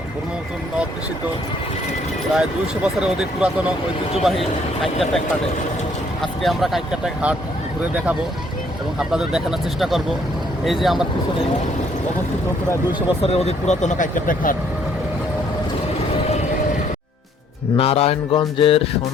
ব্রহ্মপুত্র নদ দূষিত প্রায় 200 বছরের অধিক পুরাতন ঐতিহ্যবাহী কাইক্কারটেক হাটে। আজকে আমরা কাইক্কারটেক হাট ঘুরে দেখাবো এবং আপনাদের দেখানোর চেষ্টা করব। এই যে আমার পিছনে অবস্থিত প্রায় 200 বছরের অধিক পুরাতন কাইক্কারটেক হাট। নারায়ণগঞ্জের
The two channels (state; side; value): normal; both; correlation 0.65